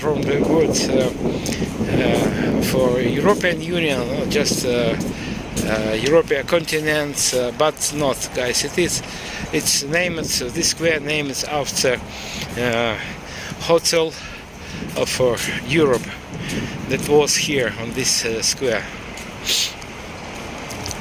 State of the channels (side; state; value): both; identical; correlation 1.00